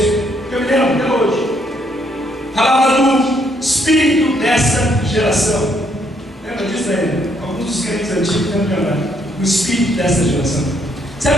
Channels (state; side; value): normal; both; correlation 0.71